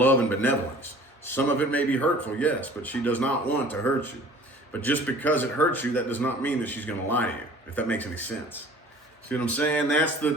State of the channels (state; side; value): normal; both; correlation 0.48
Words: and benevolence. Some of it may be hurtful, yes, but she does not want to hurt you. But just because it hurts you, that does not mean that she's going to lie to you, if that makes any sense. See what I'm saying? That's